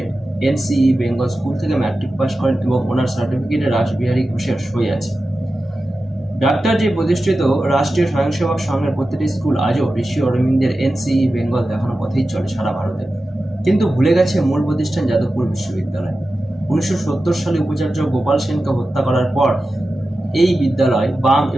এনসিই বেঙ্গল স্কুল থেকে ম্যাট্রিক পাস করেন এবং ওনার সার্টিফিকেটে রাসবিহারী ঘোষের সই আছে। ডাক্তার জি প্রতিষ্ঠিত রাষ্ট্রীয় স্বয়ংসেবক সংঘের প্রতিটি স্কুল আজও ঋষি অরবিন্দের এনসিই বেঙ্গল দেখানো পথেই চলে সারা ভারতে। কিন্তু ভুলে গেছে মূল প্রতিষ্ঠান যাদবপুর বিশ্ববিদ্যালয়। 1970 সালে উপাচার্য গোপাল সেনকে হত্যা করার পর এই বিদ্যালয় বাম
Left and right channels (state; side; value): normal; both; correlation 0.93